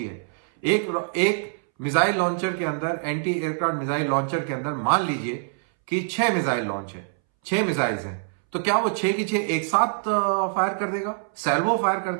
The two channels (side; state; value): left; silent; 62 dB below the other